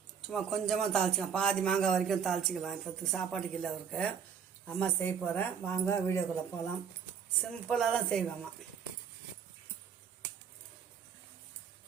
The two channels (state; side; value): quieter; left; 7.3 dB